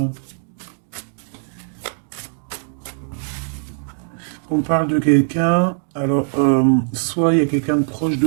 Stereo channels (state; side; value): silent; left; digital silence